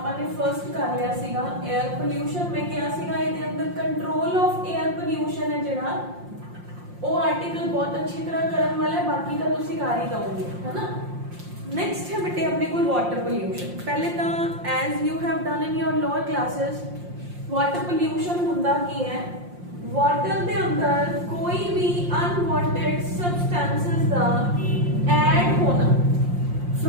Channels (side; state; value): left; late; 5.6 ms